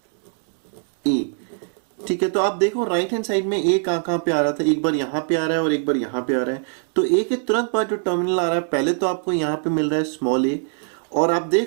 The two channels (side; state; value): left; silent; 55 dB below the other